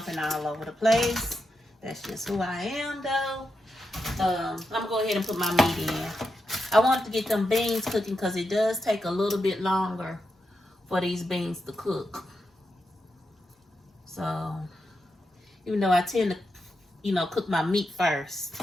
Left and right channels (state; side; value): normal; both; correlation 0.86